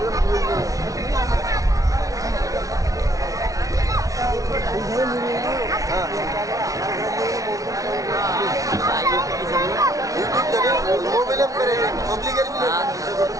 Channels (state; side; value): late; left; 0.17 ms